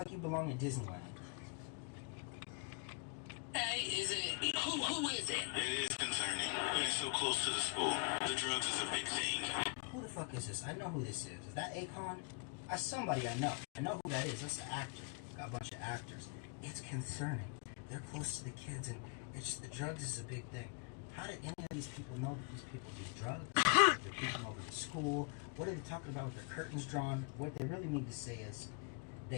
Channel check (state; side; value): quieter; right; 28.7 dB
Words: you belong in Disneyland. Hey, is it? Who is it? It is concerning. And it's so close to the school. The drugs is a big thing. Who the fuck is this? I know who this is. Is that Akon? That's somebody I know. I know who that is. That's an actor. Got a bunch of actors. It's concerning. They're close to the kids, and it's the drugs is a big thing. How did any of these people know that these people do drugs? They're peeking over the school. What are they talking about with their curtains drawn? What they really need to say is